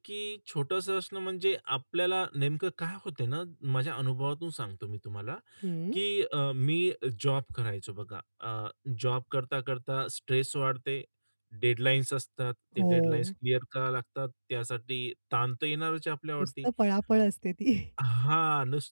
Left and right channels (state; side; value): inverted; both; correlation -1.00